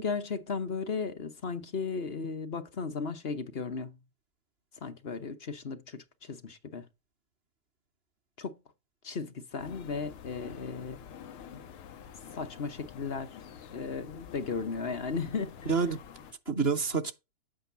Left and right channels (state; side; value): late; right; 2.9 ms